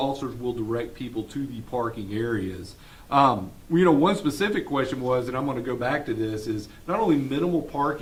will direct people to the parking areas. One specific question was, and I'm going to go back to this, is not only minimal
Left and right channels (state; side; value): identical; both; correlation 1.00